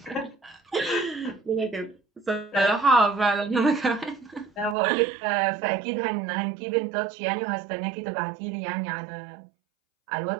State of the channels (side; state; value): left; drops out; at 4.8 s